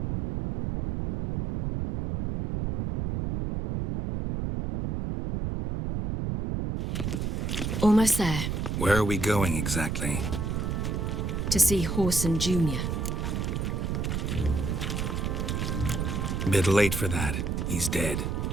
Almost there. Where are we going exactly? To see Horson Jr. Bit late for that. He's dead.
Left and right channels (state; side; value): noise; right; rumble, 1 dB below the sound